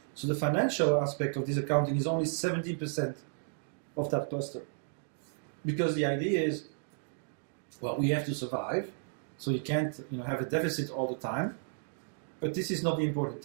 So the financial aspect of this accounting is only 17% of that cluster. Because the idea is, well, we have to survive, so you can't have a deficit all the time. But this is not the important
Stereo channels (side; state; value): left; silent; digital silence